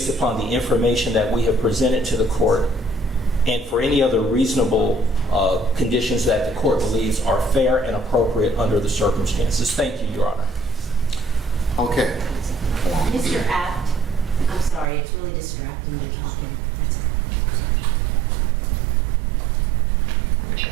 upon the information that we have presented to the court, and for any other reasonable conditions that the court believes are fair and appropriate under the circumstances. Thank you, Your Honor. Okay. Mr. Abt, I'm sorry, it's really distracting you talking.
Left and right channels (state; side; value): drops out; left; at 14.9 s